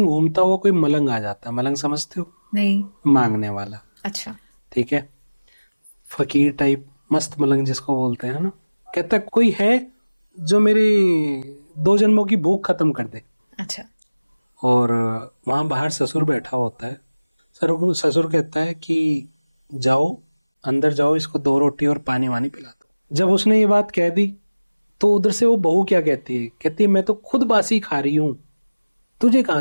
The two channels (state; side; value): inverted; both; correlation -1.00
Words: घूमता हुआ कोई मलंग आ जाता है। मलंग समझते हो? नहीं। मांगने वाला। अच्छा। ठीक है, फकीर टाइप, मस्त मलंग जिसको बोलते हैं ना। कहता है, कोई है जो मेरी 2 जन्मों की भूख खत्म कर दे। अच्छा। और वहां बाहर ससुर बैठा होता है। ससुर कहता है कि जाओ, अंदर जाओ, इसको 2 रोटी और पानी वानी पिला दो। जब उसने ये बात कह दी तो उधर से वो बहू क्या कहती है, कहती है मैं तो खुद बासी खा रही हूँ, तुझे कहाँ